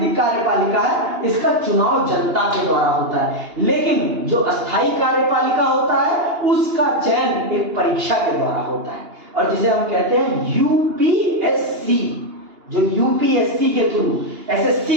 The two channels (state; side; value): late; left; 2.9 ms